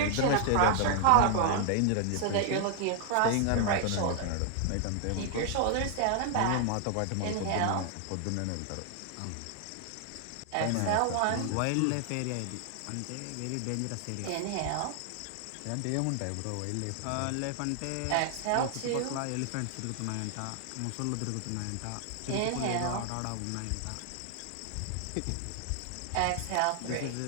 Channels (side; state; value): both; different; correlation 0.00